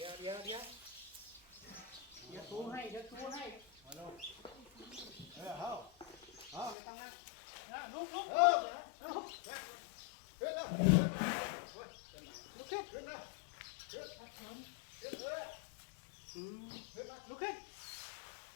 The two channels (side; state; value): right; drops out; at 6.8 s